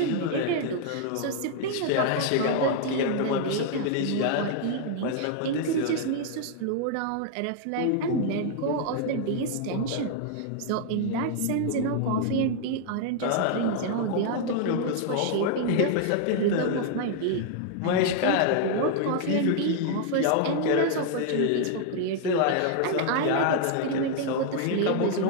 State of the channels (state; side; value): different; both; correlation 0.00